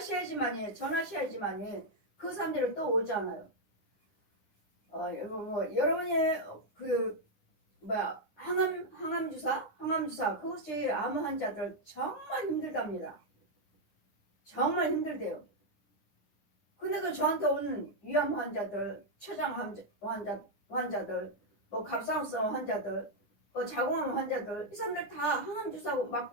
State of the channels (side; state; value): right; late; 10 ms